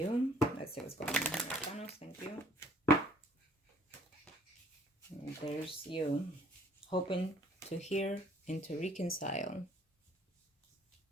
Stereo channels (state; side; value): normal; both; correlation 0.58